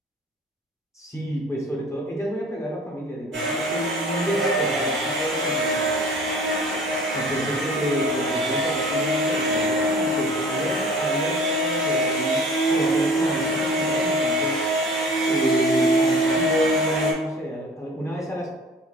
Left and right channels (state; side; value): normal; both; correlation 0.47